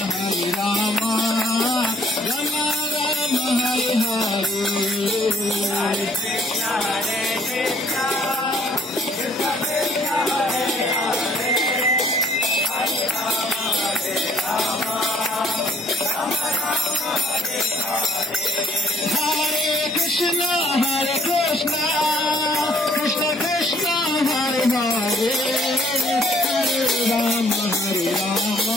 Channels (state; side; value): normal; both; correlation 0.61